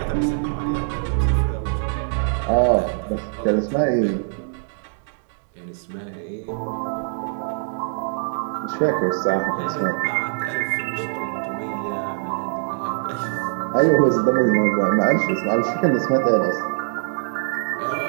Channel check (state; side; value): silent; left; digital silence